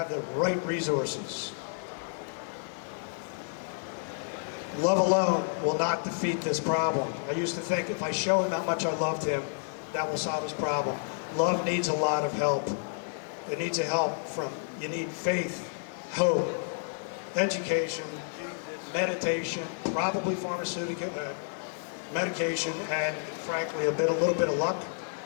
the right resources. Love alone will not defeat this problem. I used to think if I show him how much I loved him, that will solve his problem. Love needs a lot of help. It needs a help from, you need faith, hope, education, meditation, probably pharmaceutical medication, and frankly, a little bit of luck.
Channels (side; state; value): right; silent; digital silence